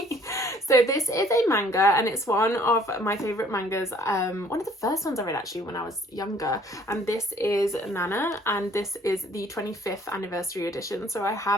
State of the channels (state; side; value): normal; both; correlation 0.58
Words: So So this is a manga, and it's one of my favourite mangas, one of the first ones I read actually when I was younger, and this is Nana, and this is the 25th anniversary edition. So I